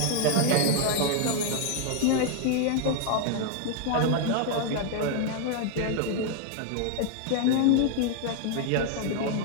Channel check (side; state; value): both; different; correlation 0.00